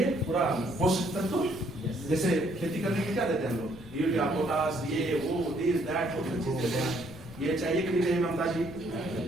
पूरा पोषक तत्व। जैसे खेती करने के क्या देते हैं हम लोग? यूरिया, पोटास, ये वो दिस दैट बहुत चीज देते हैं। ये चाहिए कि नहीं चाहिए ममता जी?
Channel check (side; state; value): right; noise; rumble, 21 dB below the sound